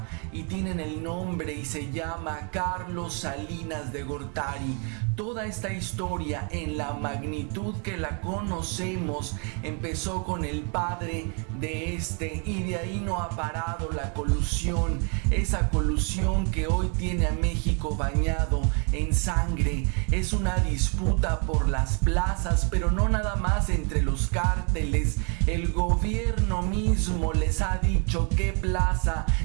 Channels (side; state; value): left; quieter; 38.3 dB